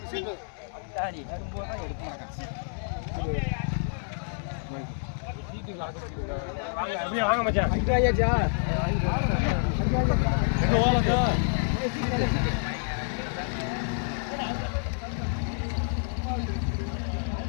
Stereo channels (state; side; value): silent; right; 59 dB below the other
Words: சரி வரும்போது தான் எடுக்க மாட்டேன். அப்படியே வாங்க மச்சான். ஐயாச்சா எங்க ஓலதா